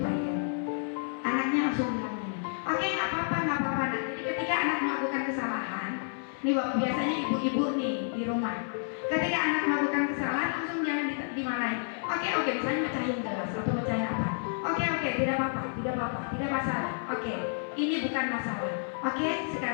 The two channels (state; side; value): silent; right; 58 dB below the other